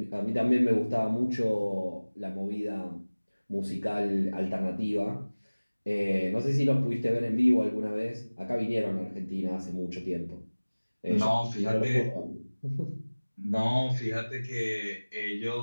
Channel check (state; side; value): inverted; both; correlation -1.00